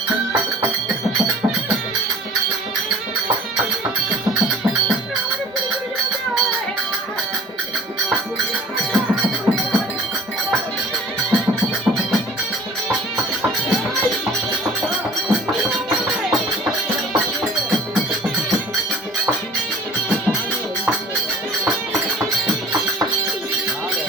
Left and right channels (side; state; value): both; normal; correlation 0.47